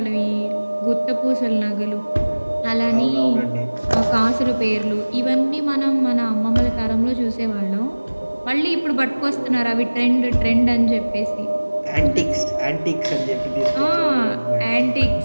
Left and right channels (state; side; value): inverted; both; correlation -1.00